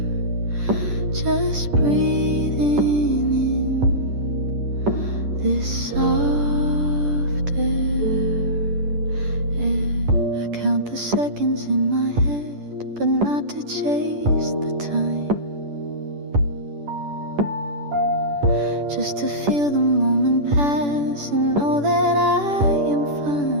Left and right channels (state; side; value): late; left; 10 ms